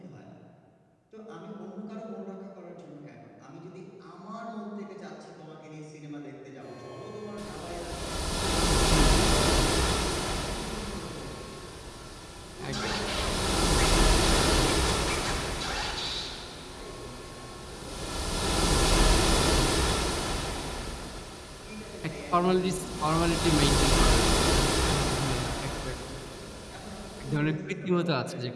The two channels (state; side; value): identical; both; correlation 1.00